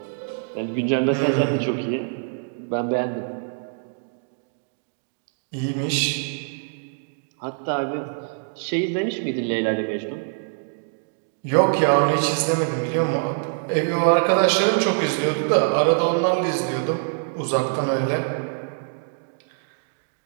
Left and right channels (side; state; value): left; silent; digital silence